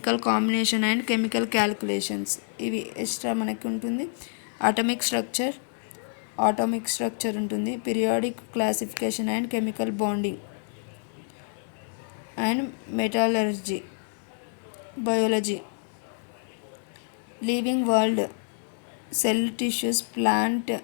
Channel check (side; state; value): right; silent; 60 dB below the other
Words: combination and chemical calculations, ఇవి extra మనకి ఉంటుంది. Atomic structure ఉంటుంది. Periodic classification and chemical bonding and metallurgy, biology, living world, cell tissues, plant